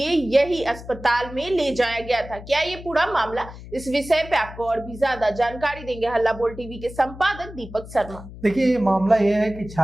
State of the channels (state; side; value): noise; left; hum, 15 dB below the sound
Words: यही अस्पताल में ले जाया गया था। क्या ये पूरा मामला, इस विषय पे आपको और भी ज्यादा जानकारी देंगे हल्ला बोल टीवी के संपादक दीपक शर्मा। देखिए, ये मामला ये है कि